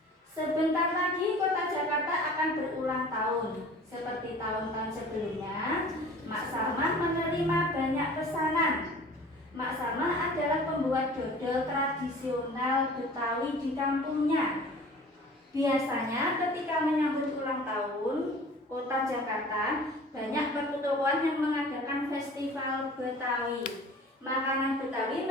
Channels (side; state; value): both; normal; correlation 0.44